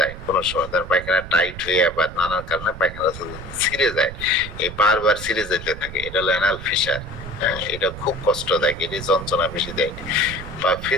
কোনো সময়, ধরেন পায়খানা টাইট হয়ে বা নানান কারণে পায়খানার রাস্তা যদি ছিঁড়ে যায়, এই বারবার ছিঁড়ে যেতে থাকে, এটা হলো অ্যানাল ফিশার। হ্যাঁ, এটা খুব কষ্টদায়ক, এটি যন্ত্রণা বেশি দেয়। বা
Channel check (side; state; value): right; noise; rumble, 12 dB below the sound